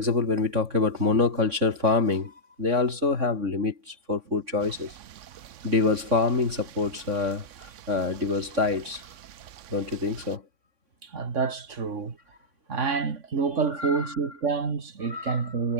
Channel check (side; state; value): left; late; 3.6 ms